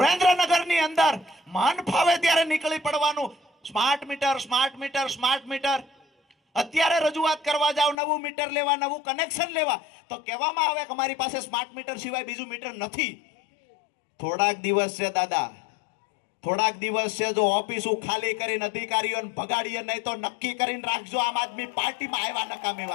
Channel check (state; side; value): drops out; right; at 8.0 s